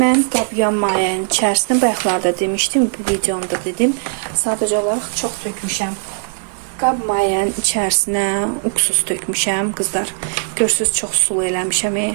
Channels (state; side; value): silent; left; 66 dB below the other